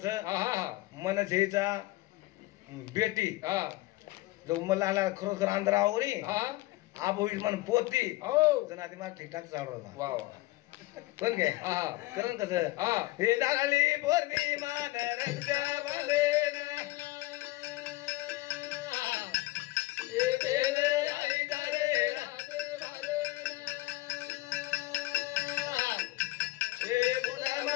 मन छेचा बेटी जो मला खरोखर आंध्रा आवरी आप होईल मन पोती जण आधी मला ठीकठाक चालू होता कोण काय करण कसं हे लागली पौर्णिमा रंगावले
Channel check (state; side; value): quieter; right; 19.3 dB